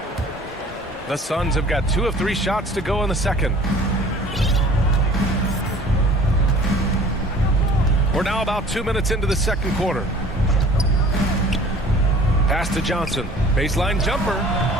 The Suns have got 2 of 3 shots to go in the second. We're now about 2 minutes into the second quarter. Pass to Johnson. Baseline jumper.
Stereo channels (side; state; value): both; normal; correlation 0.48